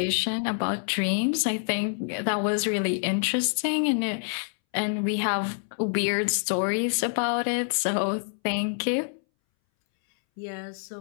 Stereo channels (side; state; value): right; silent; 60 dB below the other